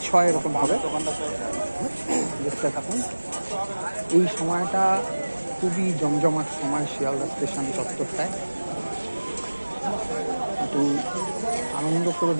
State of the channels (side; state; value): both; inverted; correlation -1.00